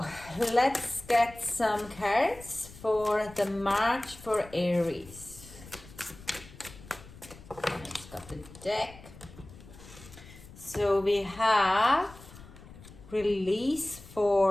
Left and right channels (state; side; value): noise; left; rumble, 19 dB below the sound